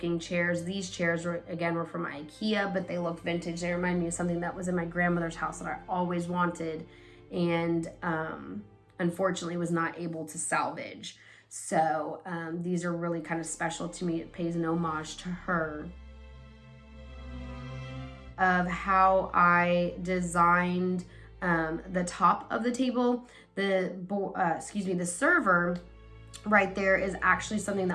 chairs. These chairs were from Ikea, but they look vintage. They remind me of something that was in my grandmother's house that I always wanted, and unfortunately was not able to salvage. So these are really kind of special to me. It pays an homage to her. Of how I designed the top of the table. The server right there is actually something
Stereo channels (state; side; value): identical; both; correlation 1.00